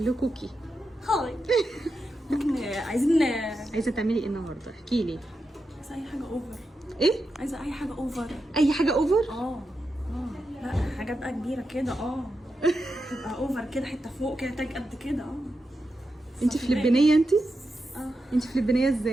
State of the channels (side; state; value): both; normal; correlation 0.88